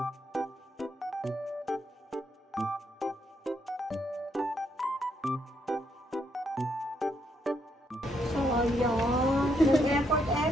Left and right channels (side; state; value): both; normal; correlation 0.76